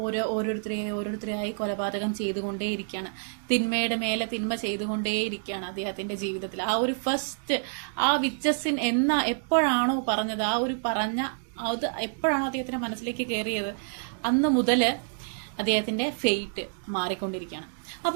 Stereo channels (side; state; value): left; silent; 59 dB below the other